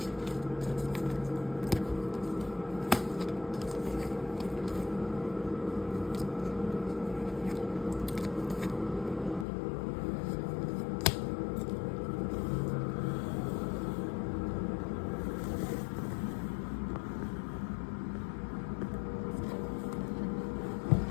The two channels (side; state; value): right; drops out; at 9.5 s